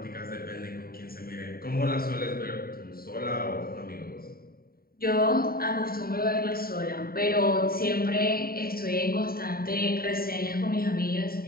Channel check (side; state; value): right; late; 0.43 ms